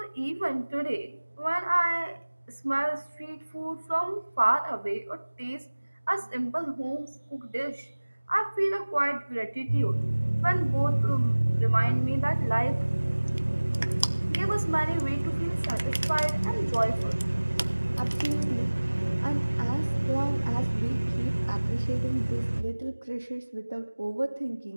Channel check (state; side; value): inverted; both; correlation -1.00